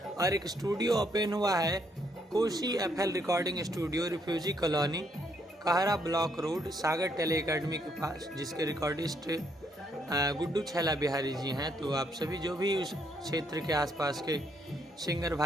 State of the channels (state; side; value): normal; both; correlation 0.72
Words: और एक स्टूडियो ओपन हुआ है Koshi FL recording studio, refugee colony, Kahra block road, Sagar tele academy के पास, जिसके रिकॉर्डिस्ट गुड्डू छैला बिहारी जी हैं। तो आप सभी जो भी उस क्षेत्र के आसपास के सिंगर